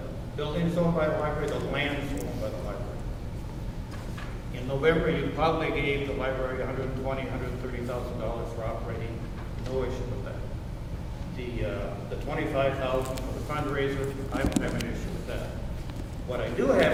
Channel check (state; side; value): identical; both; correlation 1.00